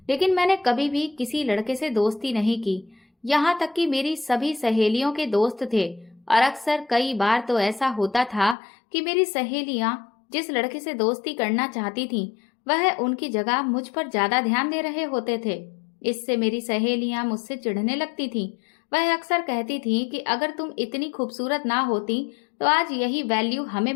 लेकिन मैंने कभी भी किसी लड़के से दोस्ती नहीं की। यहाँ तक कि मेरी सभी सहेलियों के दोस्त थे और अक्सर कई बार तो ऐसा होता था कि मेरी सहेलियां जिस लड़के से दोस्ती करना चाहती थीं, वह उनकी जगह मुझ पर ज्यादा ध्यान दे रहे होते थे। इससे मेरी सहेलियां मुझसे चिढ़ने लगती थीं। वह अक्सर कहती थी कि अगर तुम इतनी खूबसूरत ना होती तो आज यही वैल्यू हमें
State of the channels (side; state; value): right; drops out; at 8.6 s